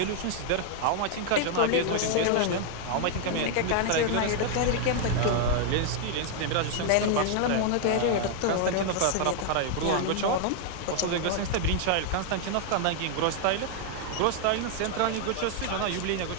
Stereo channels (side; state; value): both; different; correlation 0.00